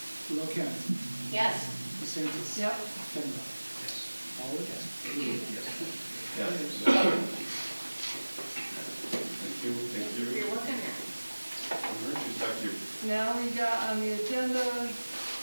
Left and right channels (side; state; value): both; inverted; correlation -1.00